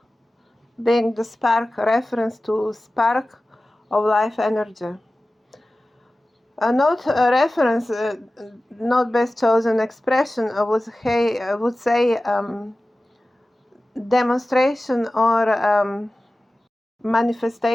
being the spark, reference to spark of life energy. Not a reference, not best chosen expression, I would say demonstration or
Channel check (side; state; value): both; normal; correlation 0.96